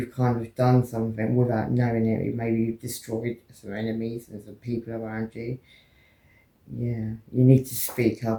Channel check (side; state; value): both; identical; correlation 1.00